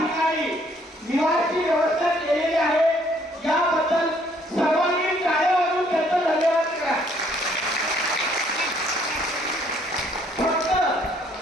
निवासी व्यवस्था केलेली आहे। याबद्दल सर्वांनी टाळ्या वाजवून त्यांचा धन्यवाद करा।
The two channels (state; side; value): normal; both; correlation 0.64